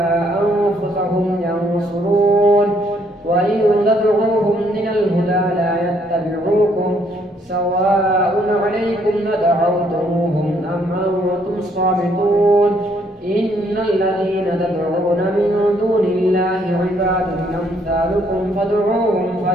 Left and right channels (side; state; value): both; normal; correlation 0.68